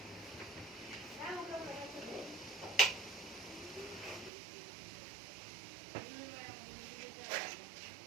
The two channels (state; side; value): drops out; left; at 4.3 s